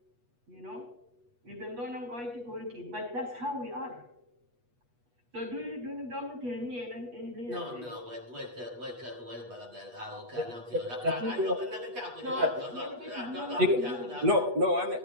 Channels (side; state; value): left; late; 8.3 ms